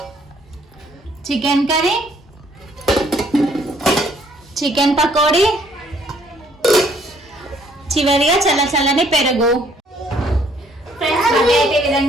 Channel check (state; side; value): normal; both; correlation 0.64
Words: chicken curry, chicken pakodi, చివరిగా చల్లని పెరుగు. ఫ్రెండ్స్ బర్త్డే అయితే ఈ